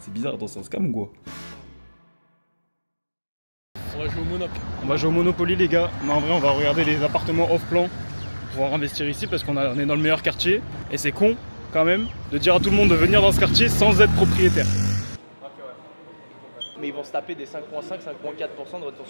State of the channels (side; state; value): both; inverted; correlation -1.00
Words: bizarre, dans un scam ou quoi? On va jouer au Monopoly. On va jouer au Monopoly les gars. Mais en vrai on va regarder les appartements off-plan pour pouvoir investir ici parce qu'on est dans le meilleur quartier. Et c'est con quand même de dire à tout le monde de venir dans ce quartier sans être propriétaire. Mais ils vont se taper des 5,5-5,4% de retour